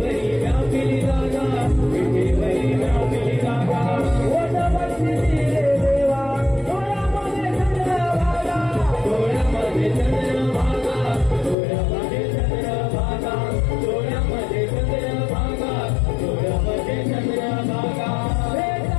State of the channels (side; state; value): right; drops out; at 11.6 s